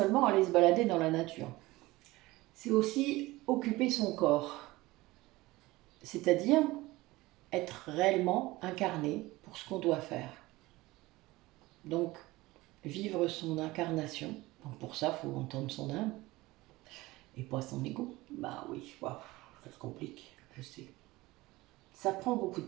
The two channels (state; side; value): quieter; left; 19.8 dB